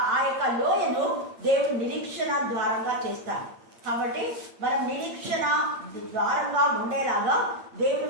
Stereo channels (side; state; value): left; late; 8.7 ms